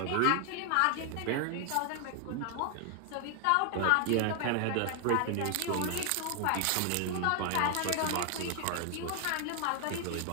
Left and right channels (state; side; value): different; both; correlation 0.00